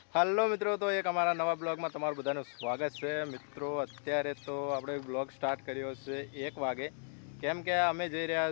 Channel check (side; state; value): right; silent; 54 dB below the other